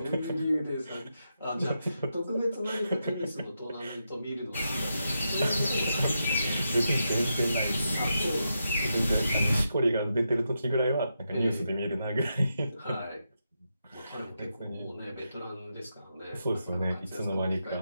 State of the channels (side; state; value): both; inverted; correlation -0.85